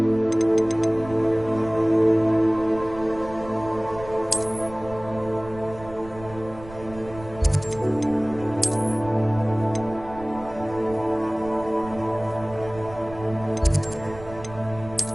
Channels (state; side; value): noise; right; rumble, 16 dB below the sound